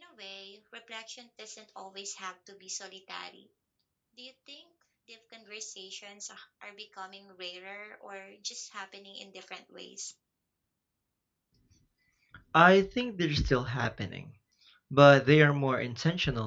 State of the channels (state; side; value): identical; both; correlation 1.00